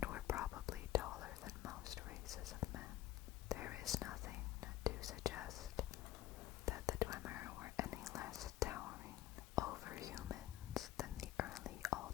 were probably taller than most races of men. There is nothing to suggest that the Dwemer were any less towering over humans than the early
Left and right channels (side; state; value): right; quieter; 14.6 dB